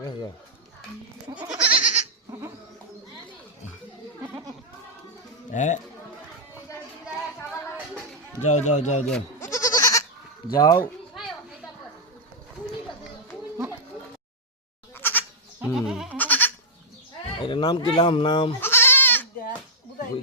কাছে যাও। হ্যাঁ, যাও যাও যাও যাও যাও। এটা নাম কি? নাম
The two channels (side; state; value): both; normal; correlation -0.07